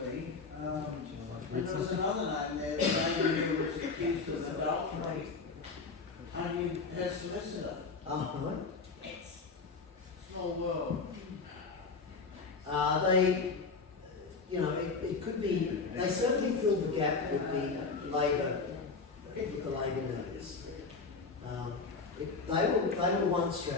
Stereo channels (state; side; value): quieter; right; 4.4 dB